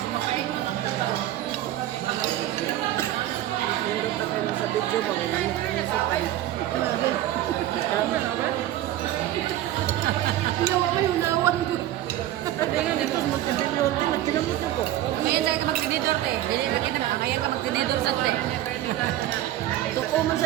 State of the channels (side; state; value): left; quieter; 13.6 dB